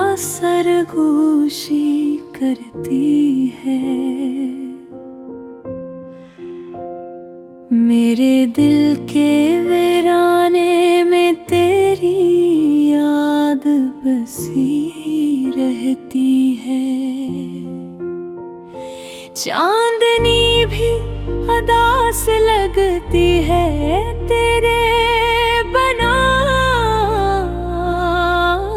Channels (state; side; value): identical; both; correlation 1.00